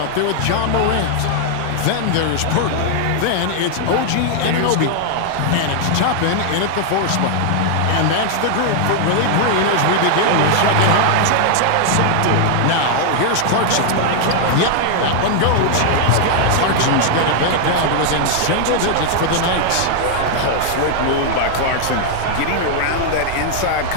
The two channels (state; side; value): different; both; correlation 0.00